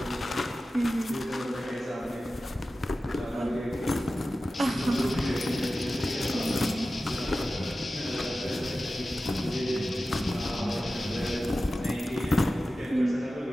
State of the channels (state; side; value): normal; both; correlation 0.94